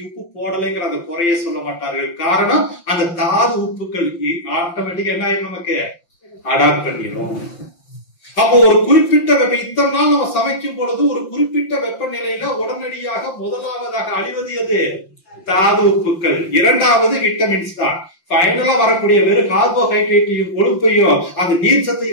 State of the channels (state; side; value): late; right; 5.7 ms